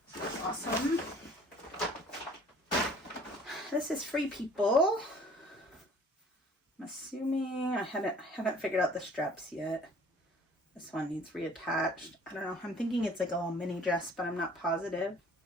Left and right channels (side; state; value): both; normal; correlation 0.52